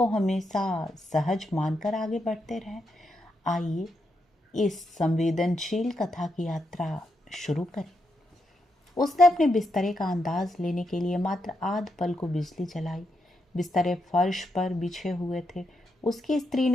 हमेशा सहज मानकर आगे बढ़ते रहें? आइए इस संवेदनशील कथा की यात्रा शुरू करें। उसने अपने बिस्तरे का अंदाज लेने के लिए मात्र आध पल को बिजली जलाई। बिस्तरे फर्श पर बिछे हुए थे। उसकी स्त्री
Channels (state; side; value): normal; both; correlation 0.82